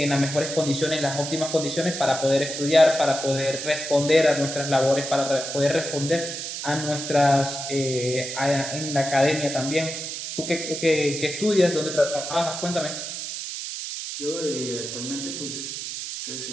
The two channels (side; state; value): right; noise; hiss, 6 dB below the sound